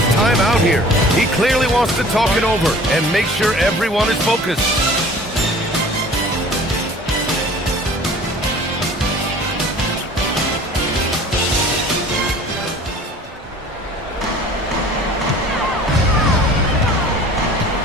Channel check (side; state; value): both; normal; correlation 0.47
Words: timeout here. He clearly wants to talk it over and make sure everyone is focused.